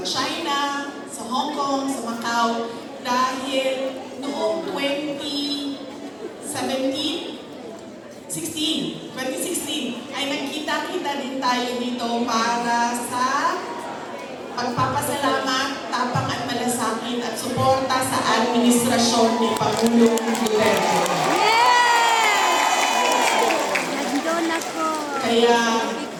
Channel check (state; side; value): identical; both; correlation 1.00